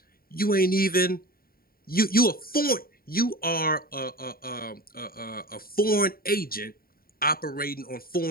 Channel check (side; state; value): right; late; 0.43 ms